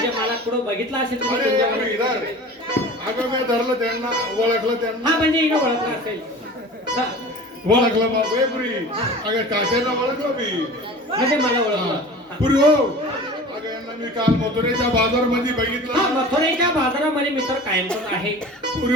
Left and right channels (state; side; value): normal; both; correlation 0.39